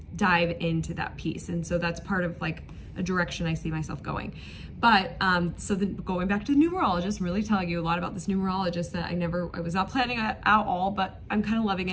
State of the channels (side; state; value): both; identical; correlation 1.00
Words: dive into that piece. And so that's part of like a direction I see myself going. But so then going back to the numerologist, I'm really telling you a lot about this numerologist that I was not planning at all, but I'm kind of loving